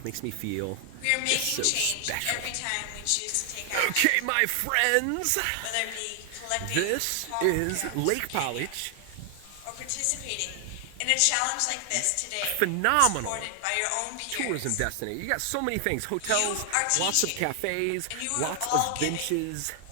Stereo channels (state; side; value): different; both; correlation 0.00